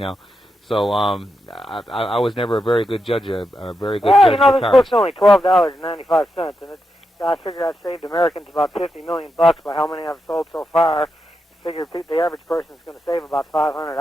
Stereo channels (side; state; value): both; normal; correlation 0.85